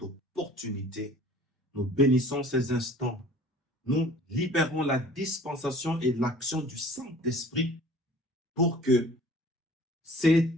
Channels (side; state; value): both; normal; correlation 0.48